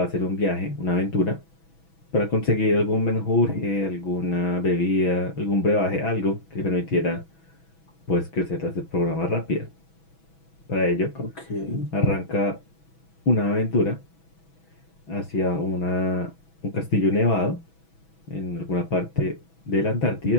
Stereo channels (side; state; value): right; late; 6.1 ms